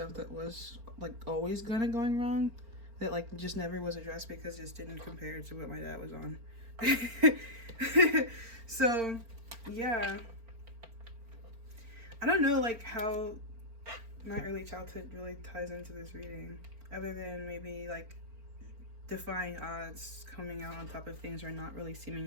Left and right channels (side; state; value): left; late; 4.4 ms